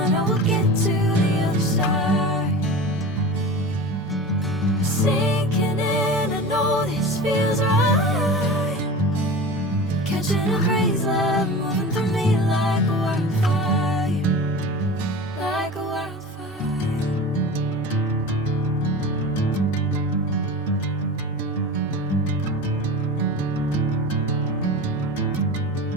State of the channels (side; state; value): both; normal; correlation 0.32